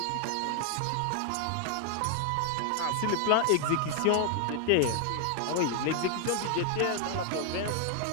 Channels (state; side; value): different; both; correlation 0.00